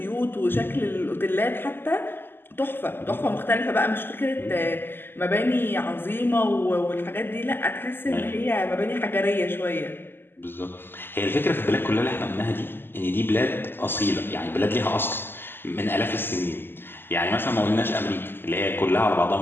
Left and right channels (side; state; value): right; late; 0.10 ms